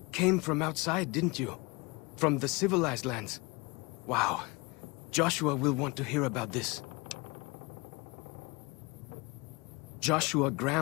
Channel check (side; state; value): right; quieter; 26.3 dB